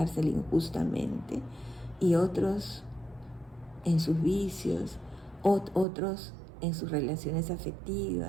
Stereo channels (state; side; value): drops out; left; at 5.9 s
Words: injustamente, y otros en sus vicios, otros en sus relaciones